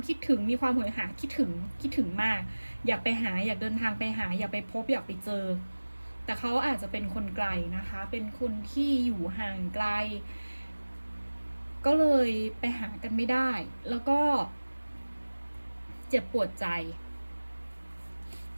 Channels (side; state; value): both; inverted; correlation -1.00